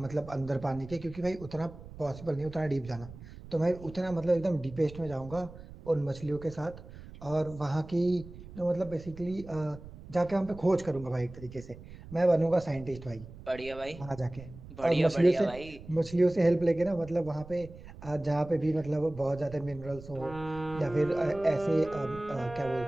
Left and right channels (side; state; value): right; noise; rumble, 16 dB below the sound